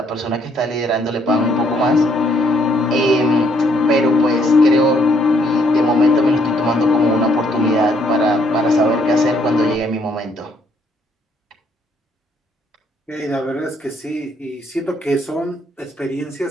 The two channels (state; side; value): normal; both; correlation 0.68